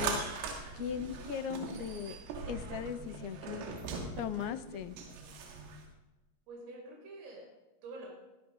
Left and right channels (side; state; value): left; late; 17 ms